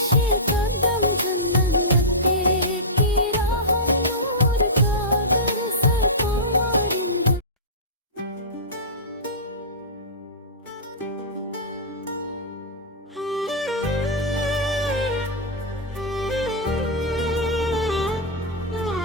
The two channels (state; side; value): normal; both; correlation -0.15